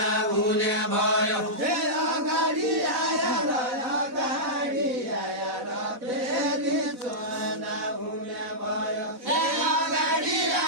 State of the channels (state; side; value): late; left; 4.1 ms